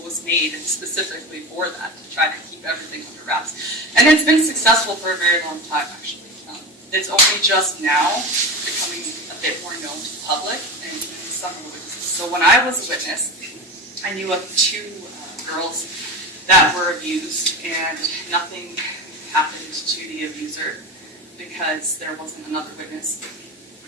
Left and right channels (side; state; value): both; normal; correlation 0.26